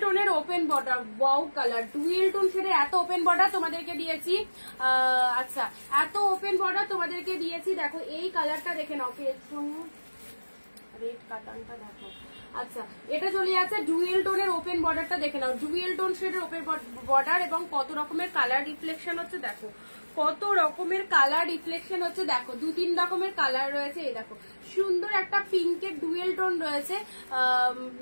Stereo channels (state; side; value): inverted; both; correlation -1.00